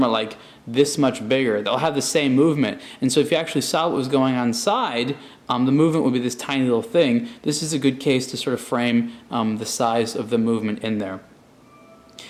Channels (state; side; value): identical; both; correlation 1.00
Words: are like this much bigger. They'll have the same movement. And so if you actually saw what was going on inside, the movement would be this tiny little thing. This is a good case to sort of frame the size of the movement in there.